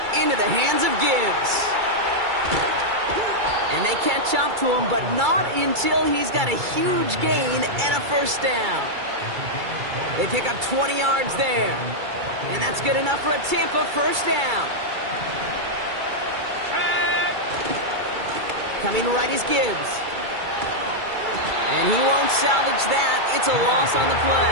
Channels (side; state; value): left; late; 2.3 ms